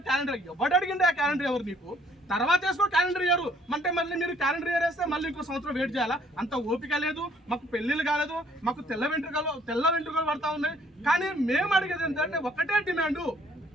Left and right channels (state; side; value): normal; both; correlation 0.62